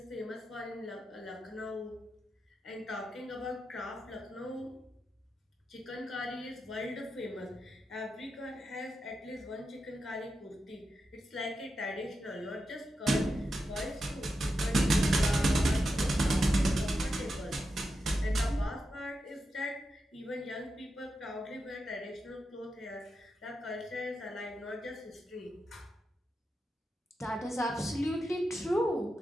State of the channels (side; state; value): both; normal; correlation 0.88